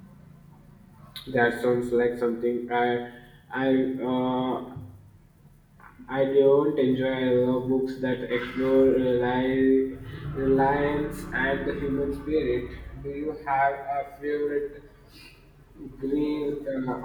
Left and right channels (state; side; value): identical; both; correlation 1.00